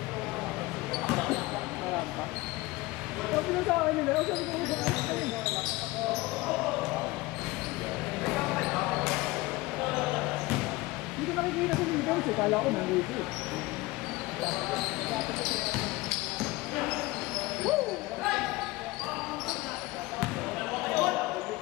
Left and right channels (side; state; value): right; quieter; 20.8 dB